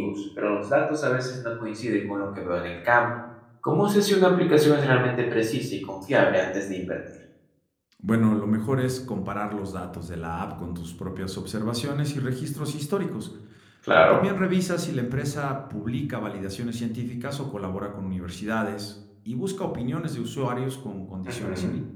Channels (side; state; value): both; identical; correlation 1.00